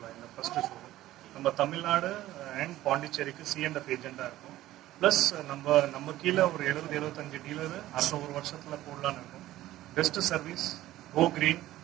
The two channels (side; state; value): left; quieter; 15.1 dB